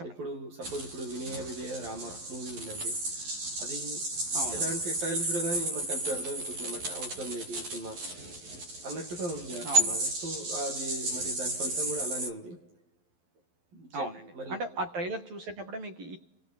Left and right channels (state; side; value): late; left; 11 ms